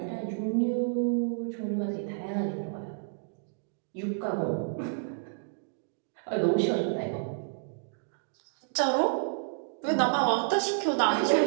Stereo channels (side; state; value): left; silent; digital silence